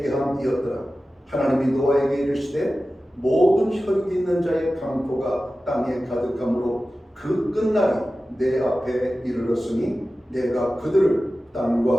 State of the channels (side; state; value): both; normal; correlation 0.95